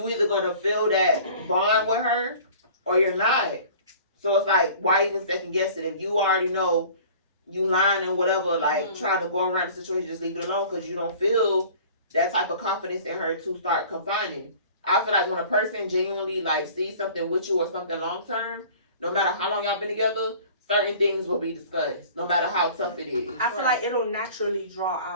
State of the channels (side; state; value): both; inverted; correlation -0.46